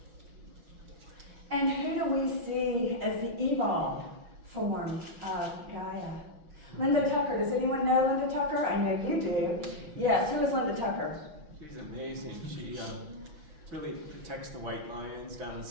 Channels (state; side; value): late; left; 6.0 ms